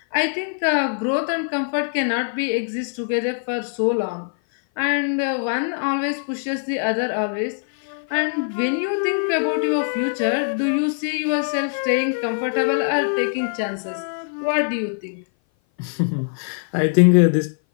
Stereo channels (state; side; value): silent; right; 58 dB below the other